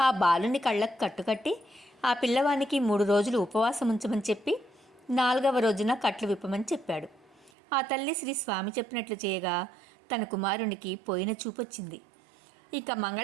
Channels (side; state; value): left; drops out; at 7.5 s